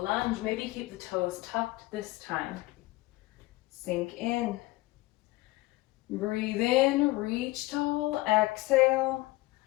lunge. Maybe keep the toes tucked this time. Sink in. Breathe in, reach tall. Exhale.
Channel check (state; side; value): quieter; right; 20.2 dB